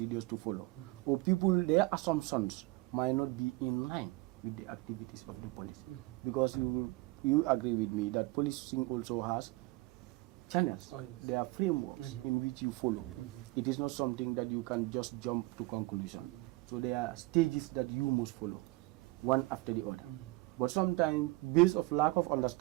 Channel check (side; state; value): left; quieter; 21.8 dB